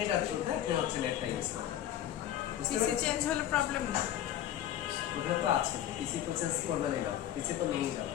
এটা থ্রুতে আপনি হচ্ছে নেটটা ইউজ করবেন। পিসি চেঞ্জ হলে প্রবলেম না? ওটা তো আছে, পিসি তো চেঞ্জ করবেনই না, পিসি তো নিয়েই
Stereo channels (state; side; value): quieter; right; 11.5 dB